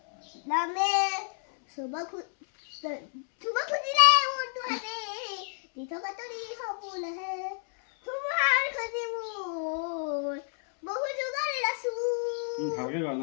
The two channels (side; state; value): right; silent; 58 dB below the other